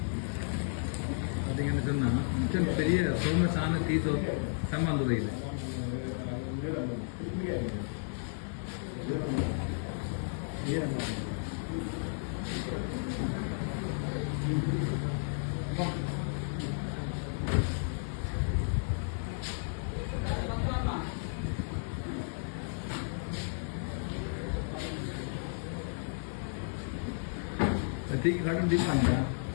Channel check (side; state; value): right; silent; digital silence